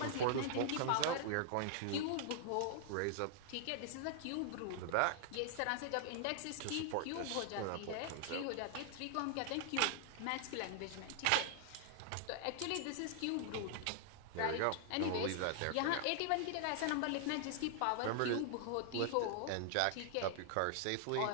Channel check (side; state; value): both; different; correlation 0.00